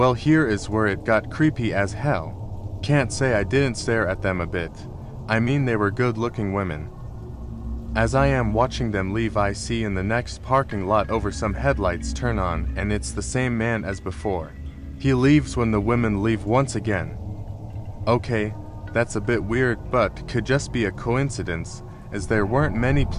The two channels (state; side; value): identical; both; correlation 1.00